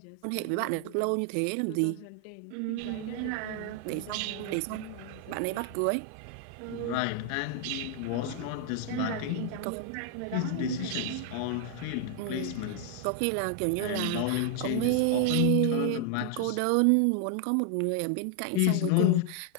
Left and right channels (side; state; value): both; different; correlation 0.00